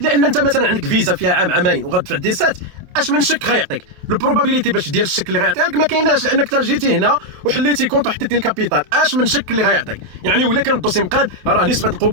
انت مثلا عندك فيزا فيها عام عامين وغتدفع ديسات، اش من شك غيعطيك البروبابيليتي باش دير الشك اللي غيعطيها لك ما كايناش، لانك تا جيتي هنا وحليتي كونت وحطيتي الكابيتال. اش من شك اللي غيعطيك يعني ولا كان الدوسي مقاد راه نسبه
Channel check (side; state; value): left; late; 28 ms